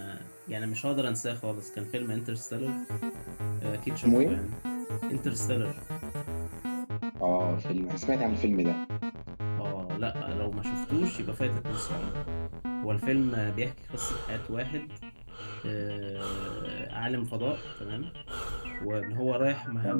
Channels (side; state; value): both; inverted; correlation -1.00